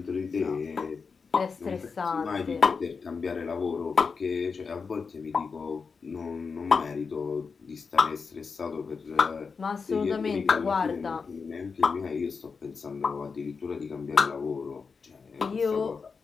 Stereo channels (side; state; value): right; quieter; 5.2 dB